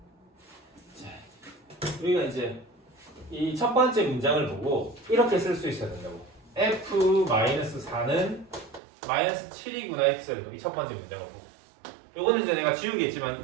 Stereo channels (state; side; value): drops out; left; at 8.8 s